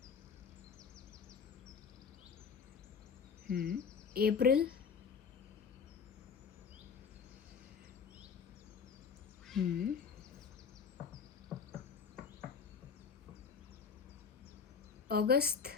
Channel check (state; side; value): quieter; right; 6.1 dB